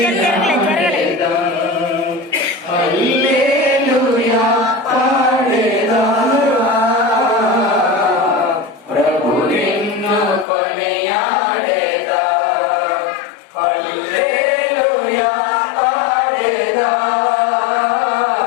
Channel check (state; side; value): drops out; right; at 10.5 s